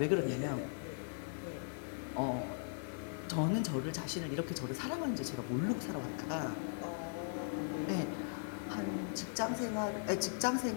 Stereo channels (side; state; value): right; silent; digital silence